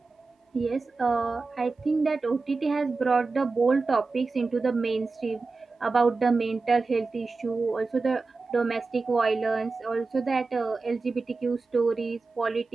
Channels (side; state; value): left; quieter; 3.9 dB